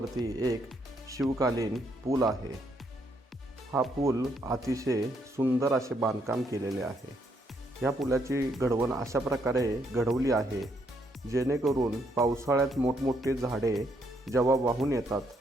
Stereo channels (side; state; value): both; normal; correlation 0.73